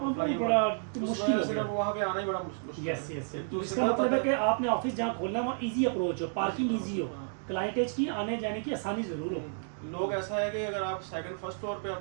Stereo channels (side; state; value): left; silent; digital silence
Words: बड़ा मुश्किल हो गया, वहाँ पे आना ही बड़ा मुश्किल। Yes yes yes. इसका मतलब है कि आपने ऑफिस जहाँ खोलना है वहाँ इजी अप्रोच हो, पार्किंग इजी हो, क्लाइंटेज की आने जाने की आसानी जरूर हो। लोग ऐसा है कि अगर आप सेकंड फर्स्ट फ्लोर पे